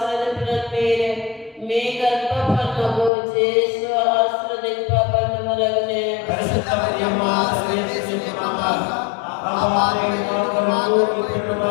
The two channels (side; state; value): right; drops out; at 3.1 s